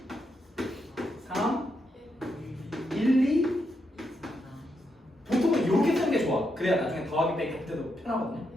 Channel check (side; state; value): both; normal; correlation 0.82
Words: 3, 1, 2. 보통은 이렇게 쓰는 게 좋아. 그래야 나중에 더하기 빼기 할 때도 편하거든요.